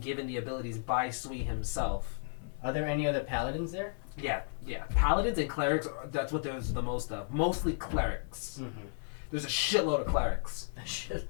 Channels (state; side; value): silent; right; 55 dB below the other